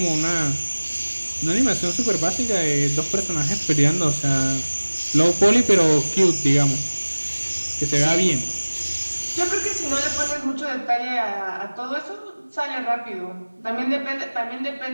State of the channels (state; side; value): inverted; both; correlation -1.00